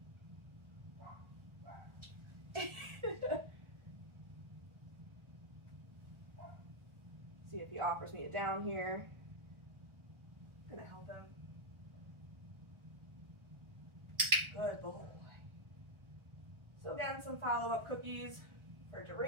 See if he offers me a down here. I'm going to help him. Good boy. So again, some follow-up cookies for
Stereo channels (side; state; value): left; late; 1.4 ms